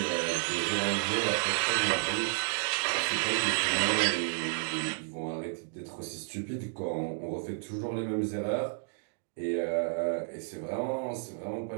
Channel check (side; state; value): left; silent; digital silence